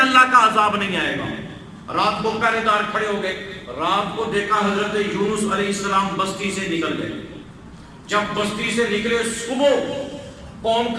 اللہ کا عذاب نہیں آئے گا۔ رات کو پہرے دار کھڑے ہو گئے، رات کو دیکھا حضرت یونس علیہ السلام بستی سے نکل گئے۔ جب بستی سے نکلے صبح قوم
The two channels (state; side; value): identical; both; correlation 1.00